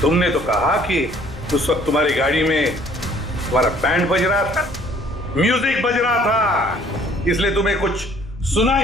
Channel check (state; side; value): normal; both; correlation 0.58